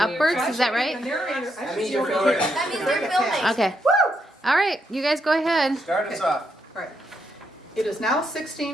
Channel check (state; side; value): normal; both; correlation 0.79